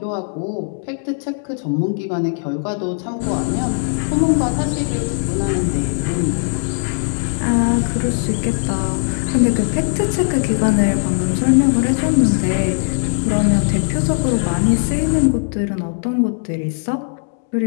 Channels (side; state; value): right; silent; 67 dB below the other